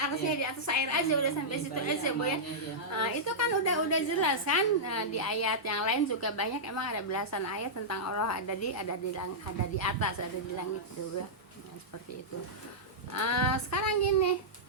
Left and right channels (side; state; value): both; normal; correlation -0.12